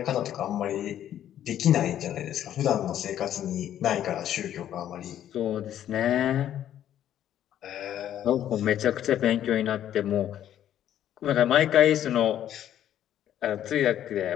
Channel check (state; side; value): quieter; right; 11.1 dB